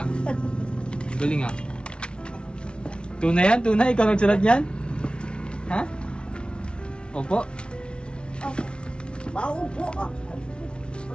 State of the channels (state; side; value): late; right; 0.057 ms